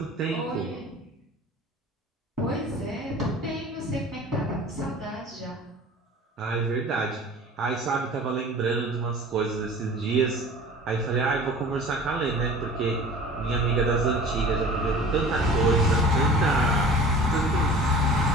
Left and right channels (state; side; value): normal; both; correlation 0.42